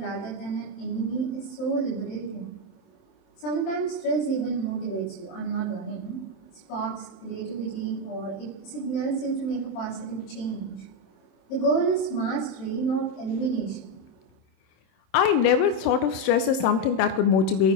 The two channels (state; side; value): late; right; 27 ms